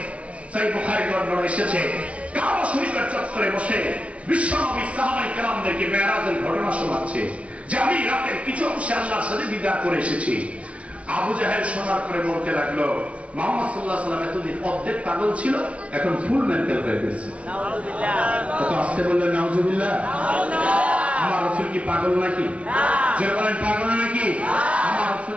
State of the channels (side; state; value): left; late; 0.063 ms